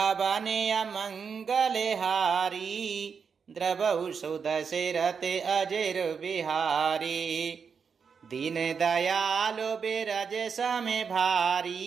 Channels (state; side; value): quieter; left; 6.1 dB